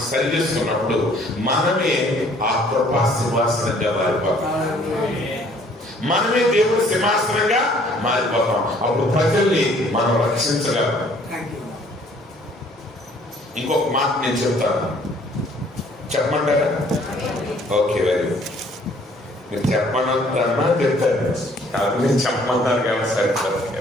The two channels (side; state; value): both; normal; correlation 0.59